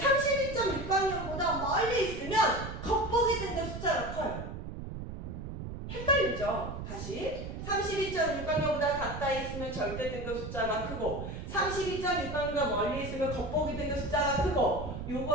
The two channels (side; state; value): right; noise; rumble, 8 dB below the sound